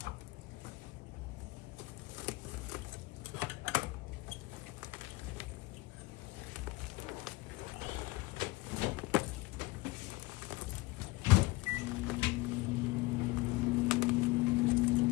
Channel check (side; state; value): right; quieter; 21.5 dB